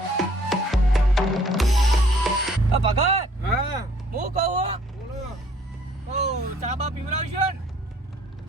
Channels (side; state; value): both; normal; correlation 0.59